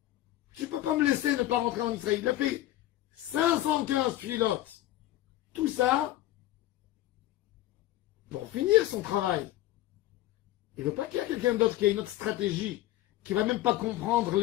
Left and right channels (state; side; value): quieter; right; 15.0 dB